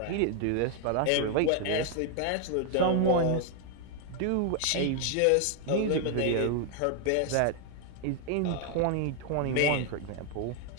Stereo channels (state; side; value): different; both; correlation 0.00